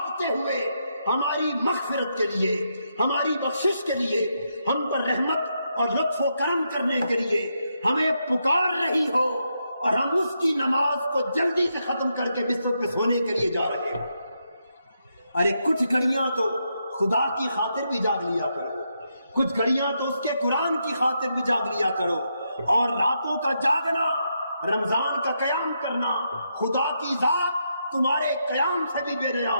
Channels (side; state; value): both; inverted; correlation -0.81